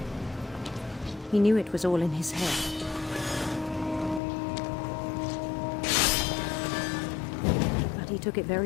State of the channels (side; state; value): right; drops out; at 4.2 s